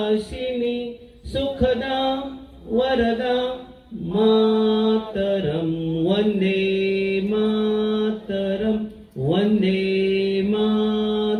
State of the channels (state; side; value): identical; both; correlation 1.00